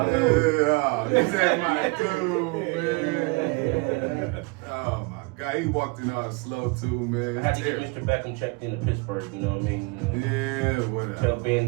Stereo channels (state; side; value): quieter; left; 28.2 dB